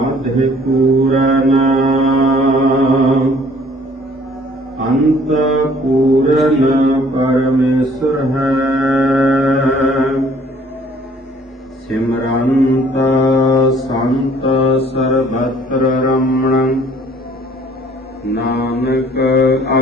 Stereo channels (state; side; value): normal; both; correlation 0.57